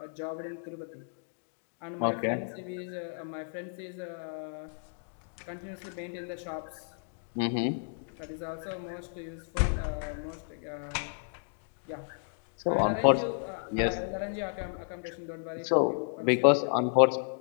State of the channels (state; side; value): silent; right; digital silence